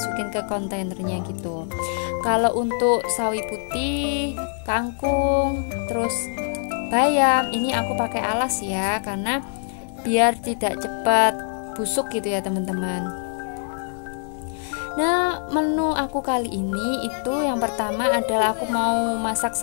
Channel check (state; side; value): silent; right; 63 dB below the other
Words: ke kontainernya gitu. Kalau untuk sawi putih, kangkung, terus bayam, ini aku pakai alas ya, karena biar tidak cepat busuk gitu ya teman-teman. Nah, menu aku kali ini itu yang pertama adalah aku mau masak